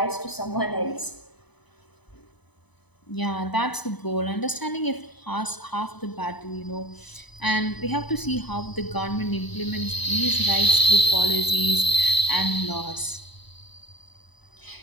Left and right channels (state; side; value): late; right; 0.99 ms